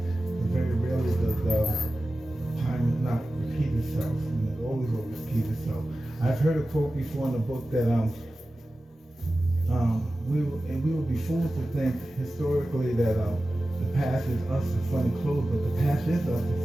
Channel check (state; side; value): normal; both; correlation 0.95